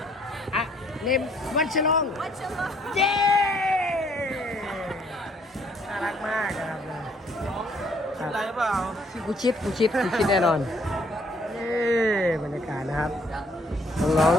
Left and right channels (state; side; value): normal; both; correlation 0.64